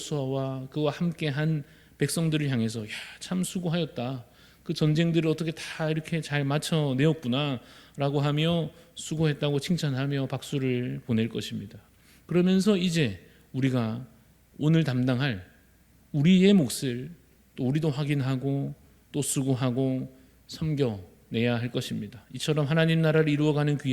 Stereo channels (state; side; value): identical; both; correlation 1.00